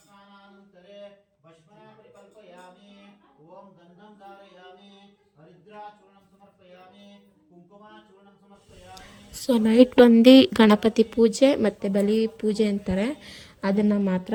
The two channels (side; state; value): both; identical; correlation 1.00